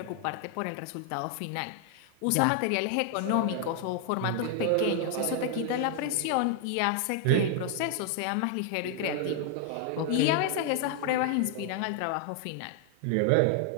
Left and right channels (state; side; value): different; both; correlation 0.00